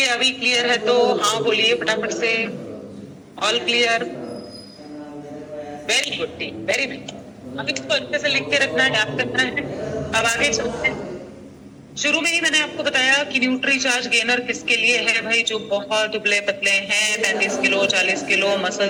अभी क्लियर है तो। हाँ बोलिए फटाफट से। All clear? Very good team, very good. अभी इसको अच्छे से लिख के रखना है, याद करना है। अब आगे चलते हैं। शुरू में ही मैंने आपको बताया कि न्यूट्री चार्ज गेनर किसके लिए है भाई? जो बहुत दुबले पतले हैं, 35 किलो 40 किलो,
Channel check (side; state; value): both; identical; correlation 1.00